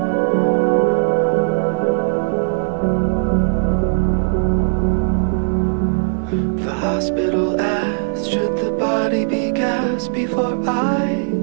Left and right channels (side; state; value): left; silent; digital silence